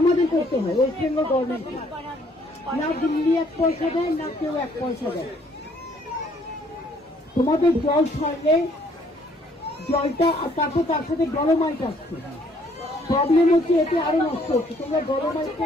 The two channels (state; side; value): normal; both; correlation 0.64